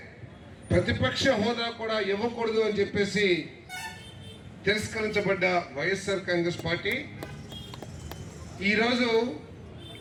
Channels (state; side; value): identical; both; correlation 1.00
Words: ప్రతిపక్ష హోదా కూడా ఇవ్వకూడదు అని చెప్పేసి తిరస్కరించబడ్డ వైఎస్ఆర్ కాంగ్రెస్ పార్టీ ఈరోజు